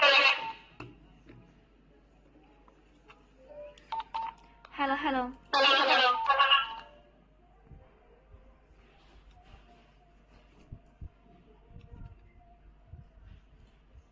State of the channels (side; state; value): both; identical; correlation 1.00